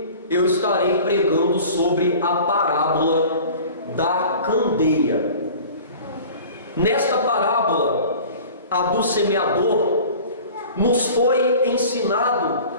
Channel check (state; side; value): inverted; both; correlation -0.43